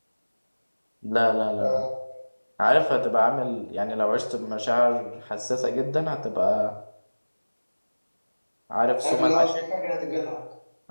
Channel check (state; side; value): inverted; both; correlation -1.00